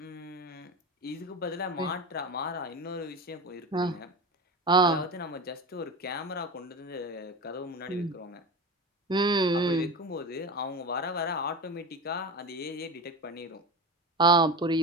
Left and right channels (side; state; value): both; normal; correlation 0.27